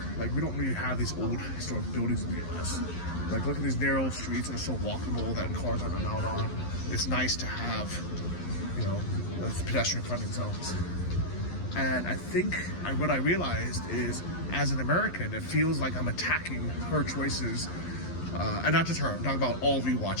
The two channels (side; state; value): right; late; 11 ms